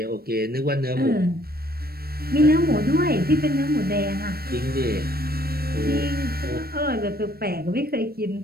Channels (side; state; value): left; late; 0.44 ms